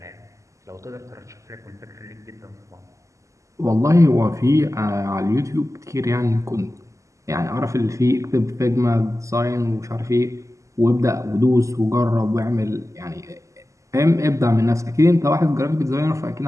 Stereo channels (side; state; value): left; late; 0.15 ms